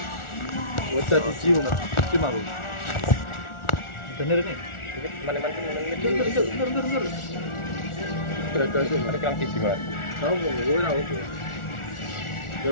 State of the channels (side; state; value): right; late; 1.4 ms